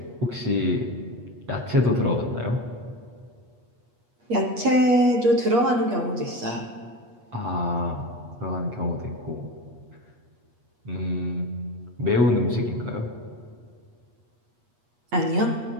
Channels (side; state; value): left; late; 8.4 ms